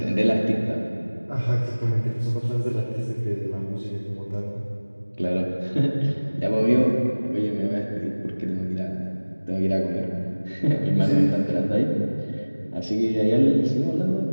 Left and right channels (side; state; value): both; inverted; correlation -1.00